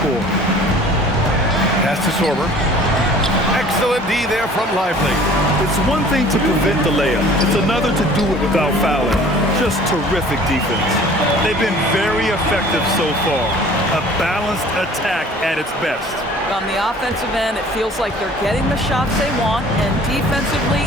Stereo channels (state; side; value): normal; both; correlation 0.49